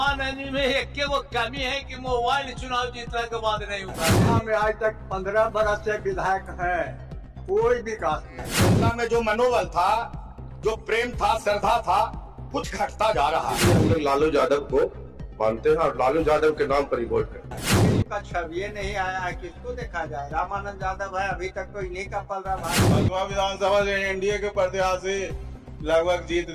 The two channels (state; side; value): identical; both; correlation 1.00